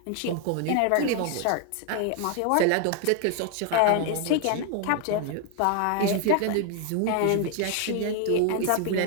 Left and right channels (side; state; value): both; different; correlation 0.00